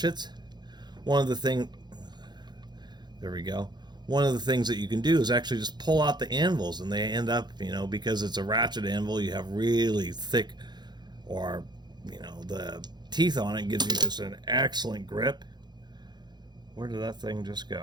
one of the things that you can do is actually just pull out the anvils, and they end up, because it's a ratchet anvil, you have really thick, or the teeth on it gives you just an excellent grip. Where did that thing just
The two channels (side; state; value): left; late; 0.21 ms